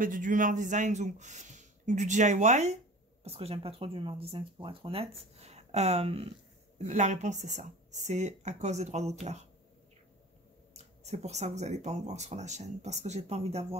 et du Dreamer Designs ou du DIY, parce que j'aime pas trop du Dreamer Designs pour être honnête, la réponse c'est ça. C'est à cause des droits d'auteur. C'est pour ça que vous n'allez pas en voir sur la chaîne, parce que j'ai pas envie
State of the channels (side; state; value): both; normal; correlation 0.39